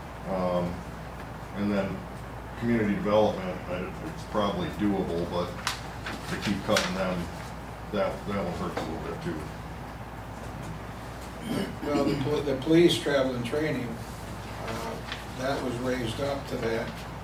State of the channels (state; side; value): identical; both; correlation 1.00